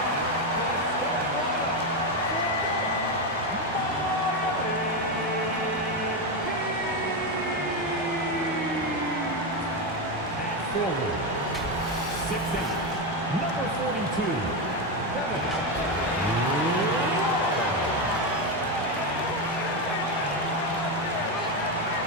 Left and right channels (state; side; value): normal; both; correlation 0.10